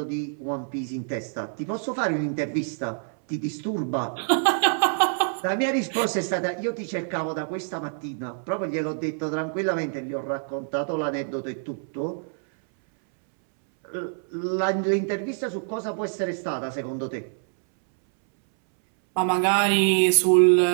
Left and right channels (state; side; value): silent; left; 61 dB below the other